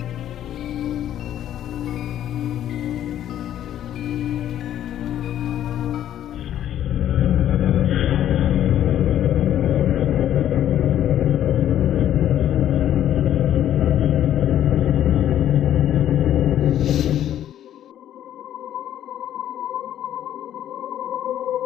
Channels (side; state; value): right; quieter; 11.3 dB